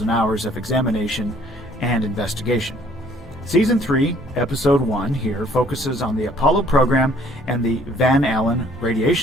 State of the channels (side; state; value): both; normal; correlation 0.59